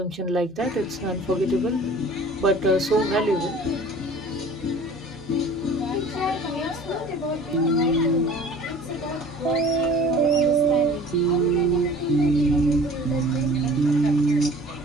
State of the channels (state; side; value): normal; both; correlation 0.45